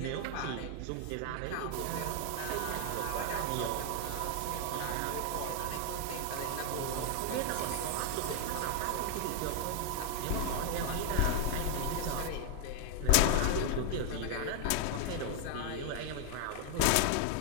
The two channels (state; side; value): different; both; correlation 0.00